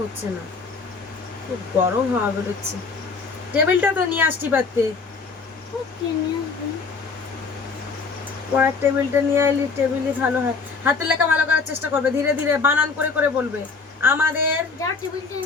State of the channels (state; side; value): quieter; right; 4.6 dB